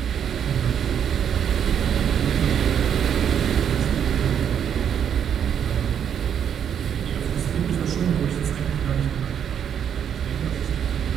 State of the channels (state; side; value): quieter; left; 8.6 dB